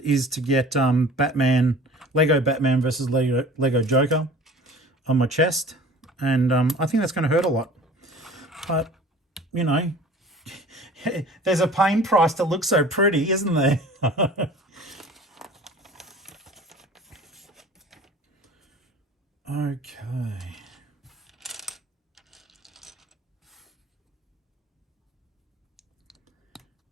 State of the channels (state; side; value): normal; both; correlation 0.44